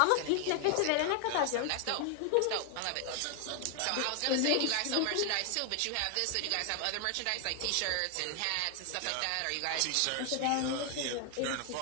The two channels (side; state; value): both; different; correlation 0.00